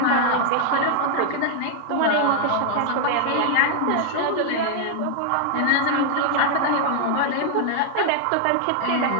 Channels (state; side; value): different; both; correlation 0.00